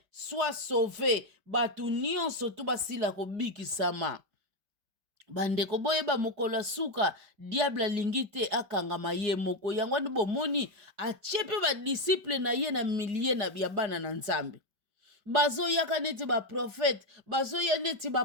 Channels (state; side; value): late; left; 5.1 ms